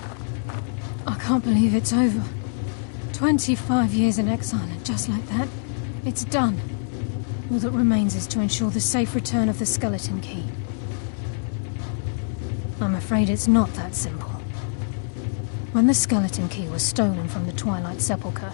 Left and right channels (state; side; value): silent; right; digital silence